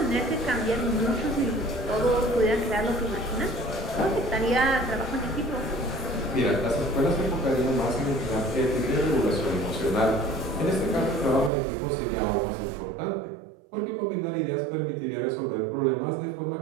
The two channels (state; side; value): drops out; left; at 11.5 s